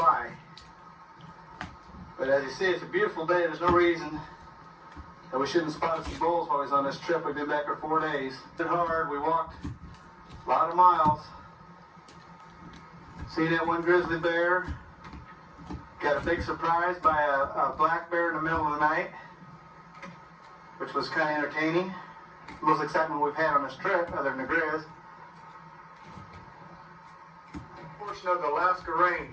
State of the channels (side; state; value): both; identical; correlation 1.00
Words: But as you see, it's a beautiful day. There's no reason that we shouldn't spot some bulls while we was on this trip. We've been back for 4 days. It's been hard. We walked a lot of miles. See that one grizzly bear? Got a big surprise by a black bear in the middle of the night, which was kind of entertaining. Most excitement we've had on this trip, other than the grizz. Portion of the Alaska